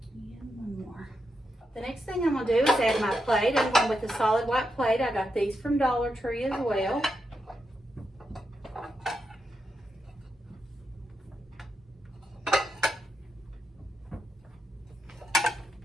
And 1 more. The next thing I'm going to do is add my plate. I'm going with a solid white plate. I got these from Dollar Tree as well.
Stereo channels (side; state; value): both; normal; correlation 0.85